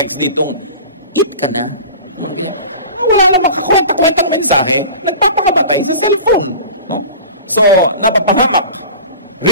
ditong, eat ka na. Wala namang kakwenta-kwentang mensahe, nagpapakabatay sa cellphone. No? So, napapahamak.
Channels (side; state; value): both; inverted; correlation -0.38